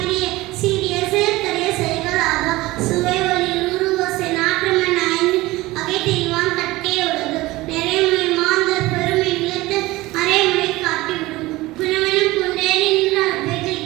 சீரிய சேர்க்கரைய செய்களாக சுவை ஒளி உருவசை நாற்றமென ஐந்து அகை தெய்வான் கட்டே உலகு நிறைமுறை மாந்தர் பெருமை நிலத்து மறைமுறை காட்டிவிடும் குணமெனும் குன்றே நின்றார் வெகு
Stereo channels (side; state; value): left; quieter; 19.5 dB